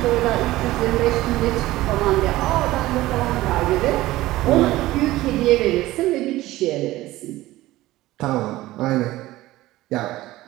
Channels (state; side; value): quieter; left; 17.1 dB